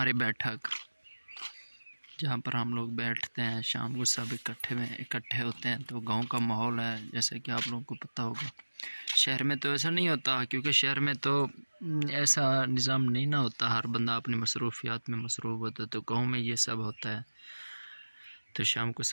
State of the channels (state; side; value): inverted; both; correlation -1.00